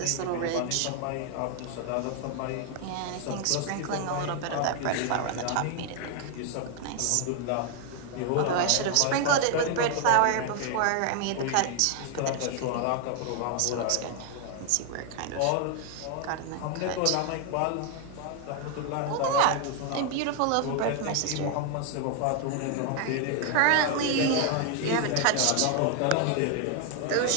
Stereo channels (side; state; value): both; different; correlation 0.00